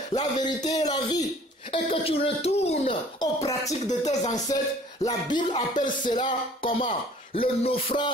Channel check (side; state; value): both; normal; correlation 0.52